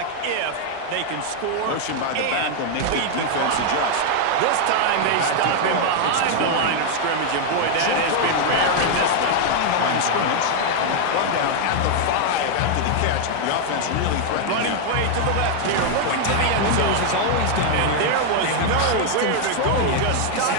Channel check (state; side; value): different; both; correlation 0.00